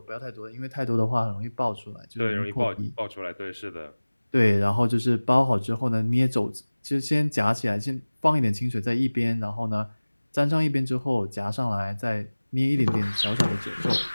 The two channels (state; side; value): inverted; both; correlation -1.00